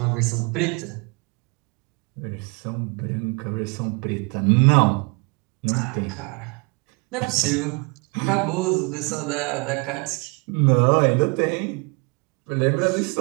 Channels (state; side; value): quieter; left; 30.9 dB